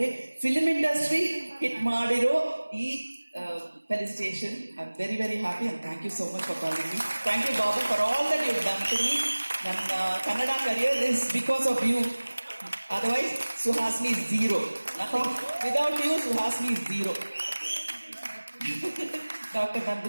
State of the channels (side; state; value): both; inverted; correlation -1.00